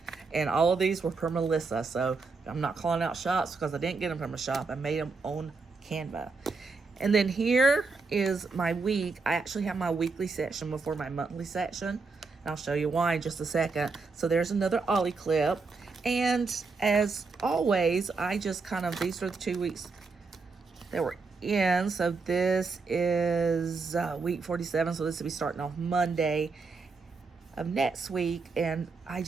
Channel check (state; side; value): quieter; left; 4.3 dB